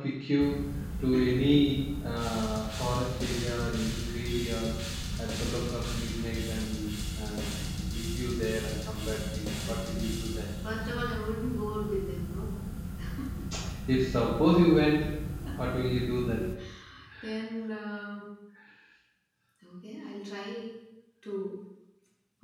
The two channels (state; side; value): identical; both; correlation 1.00